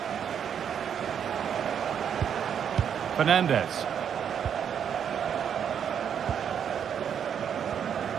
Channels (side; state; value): left; quieter; 8.2 dB